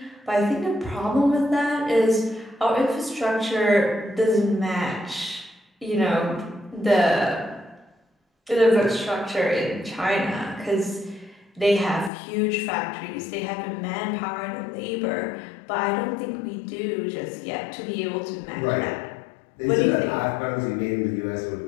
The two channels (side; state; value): right; drops out; at 12.1 s